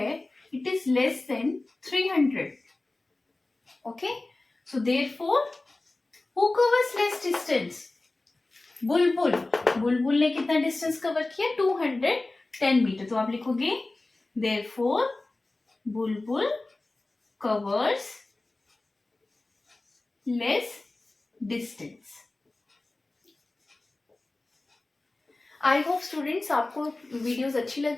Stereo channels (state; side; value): quieter; right; 3.0 dB